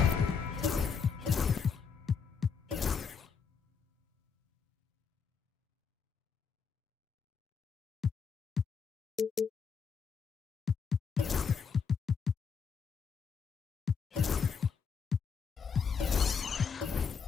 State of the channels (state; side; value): quieter; right; 6.2 dB